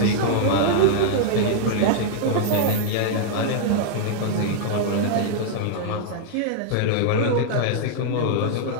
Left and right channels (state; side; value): different; both; correlation -0.01